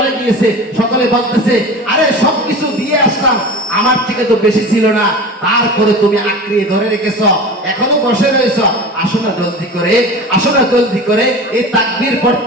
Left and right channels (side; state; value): both; normal; correlation 0.33